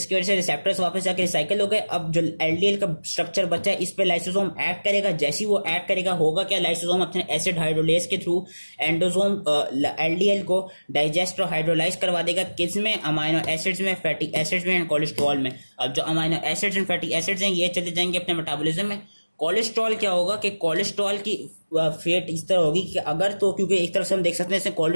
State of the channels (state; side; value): inverted; both; correlation -1.00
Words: वजह से रिसेप्टर्स वापस जाके रिसाइकल हो गए। अब जो एलडीएल का स्ट्रक्चर बचा है इस पे लाइसोसोम ऐड करेगा। जैसे ही वो ऐड करेगा होगा क्या, लाइसोसोम अपने एसिड हाइड्रोलेज के थ्रू एंडोसोम एलडीएल को डाइजेस्ट और हाइड्रोलाइज करवा देगा। किस में, अमाइनो एसिड्स में, फैटी एसिड्स में एंड कोलेस्ट्रॉल में। अब जो amino acids and fatty acids हैं ये चले जाएंगे अपने मेटाबॉलिज्म में। कोलेस्ट्रॉल क्या होगा कि कोलेस्ट्रॉल की फेट इस तरह होगी कि अगर तो क्योंकि एक तरफ से हम देख सकते हैं